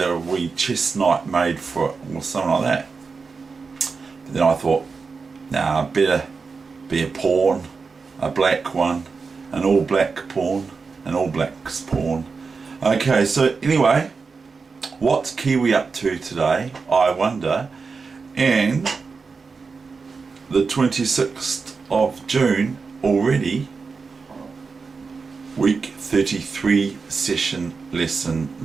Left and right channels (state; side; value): quieter; left; 4.8 dB